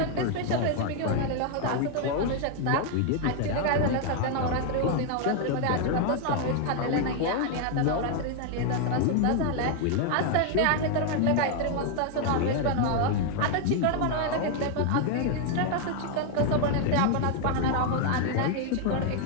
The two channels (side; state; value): both; different; correlation 0.00